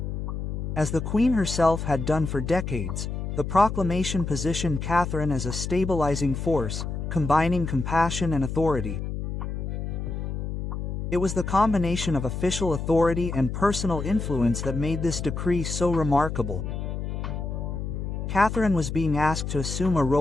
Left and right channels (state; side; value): noise; left; hum, 4 dB below the sound